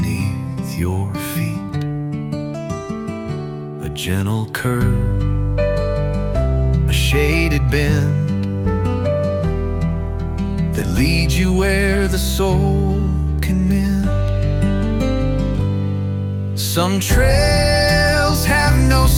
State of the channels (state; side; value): identical; both; correlation 1.00